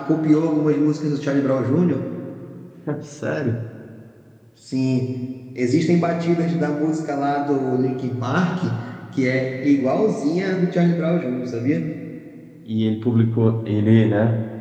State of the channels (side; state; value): both; identical; correlation 1.00